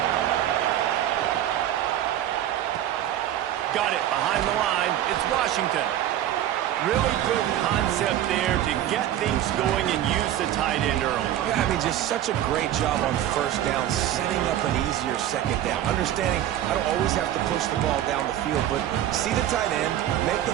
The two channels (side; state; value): left; quieter; 12.0 dB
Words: Got it behind the line. It's Washington. Really good concept there to get things going and use the tight end early. Yeah, I mean, just such a great job on first down, setting up an easier second down. Understanding I don't always have to push the ball down the field, but see the tight end, make the